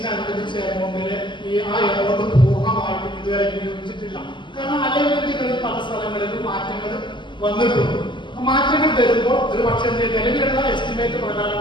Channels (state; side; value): late; right; 0.23 ms